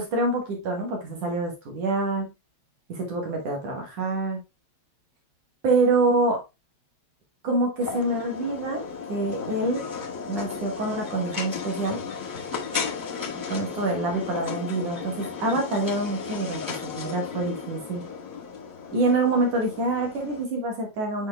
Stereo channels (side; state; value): left; late; 9.9 ms